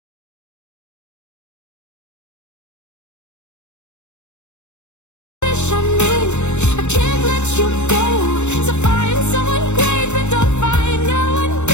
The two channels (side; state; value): right; late; 0.83 ms